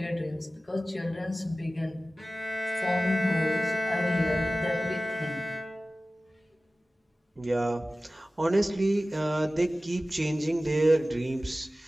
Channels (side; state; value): both; normal; correlation 0.96